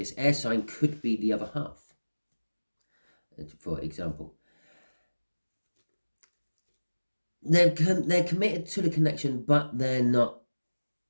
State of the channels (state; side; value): inverted; both; correlation -1.00